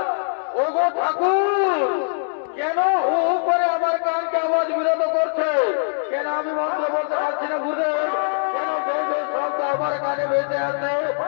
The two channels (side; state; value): right; silent; digital silence